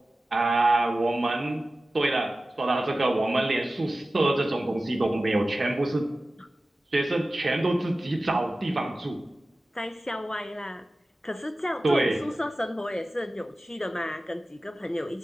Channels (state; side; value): normal; both; correlation 0.96